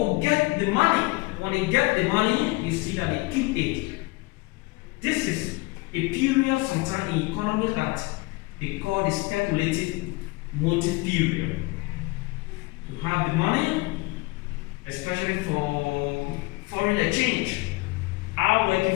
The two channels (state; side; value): quieter; right; 23.5 dB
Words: get the money. When they get the money, you see that they keep it. This is a period sometimes in economy that they call the speculative motive period. You have the money, especially for foreign exchange. I'm